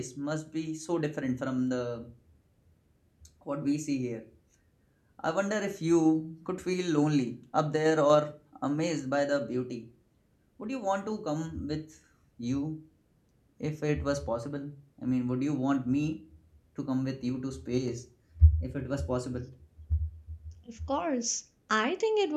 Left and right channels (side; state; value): both; identical; correlation 1.00